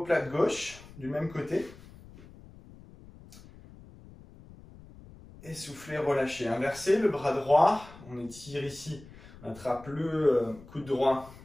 gauche, du même côté. Et soufflez, relâchez. Inversez le bras droit. On étire ici. On attrape le coude droit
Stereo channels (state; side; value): noise; left; rumble, 20 dB below the sound